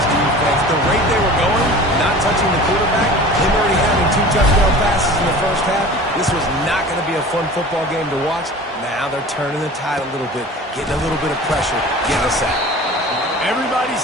defense. The rate they were going, not touching the quarterback, him already having 2 touchdown passes in the first half, this was not going to be a fun football game to watch. Now they're turning the tide a little bit, getting a little bit of pressure, getting a sack. Everybody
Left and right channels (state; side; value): normal; both; correlation 0.40